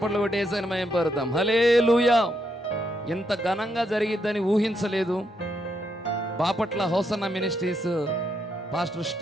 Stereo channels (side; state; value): both; normal; correlation 0.78